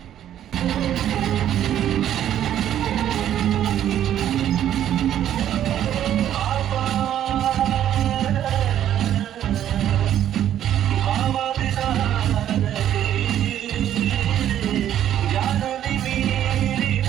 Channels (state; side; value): quieter; left; 11.0 dB